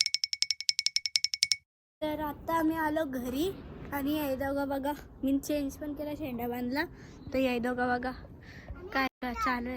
तर आता आम्ही आलो घरी. आणि याय दोघा बघा, मी चेंज पण केला, शेंडा बांधला. तर याय दोघा बघा काय चालू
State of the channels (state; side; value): identical; both; correlation 1.00